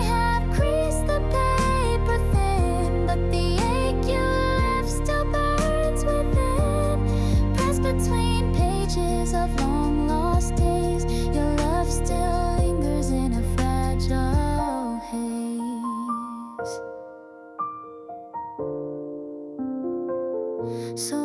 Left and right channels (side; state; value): both; identical; correlation 1.00